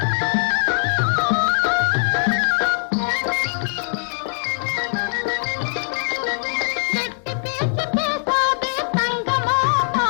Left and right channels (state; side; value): silent; right; 63 dB below the other